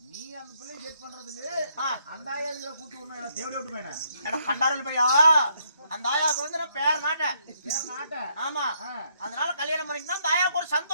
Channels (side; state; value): both; inverted; correlation -0.72